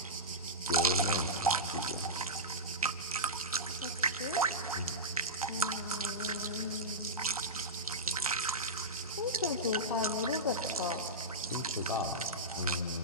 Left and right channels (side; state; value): both; normal; correlation -0.13